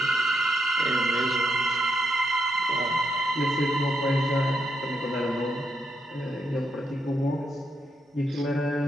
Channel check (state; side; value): normal; both; correlation 0.81